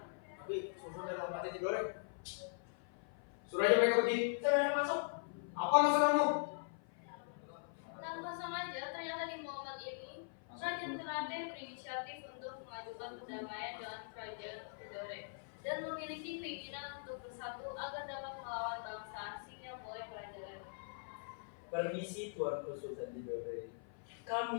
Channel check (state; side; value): silent; right; 50 dB below the other